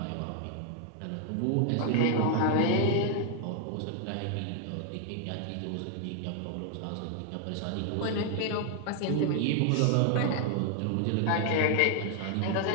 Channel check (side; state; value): both; different; correlation 0.00